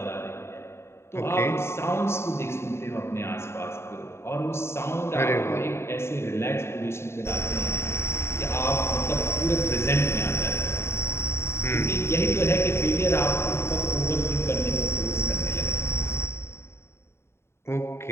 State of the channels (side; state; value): right; late; 0.12 ms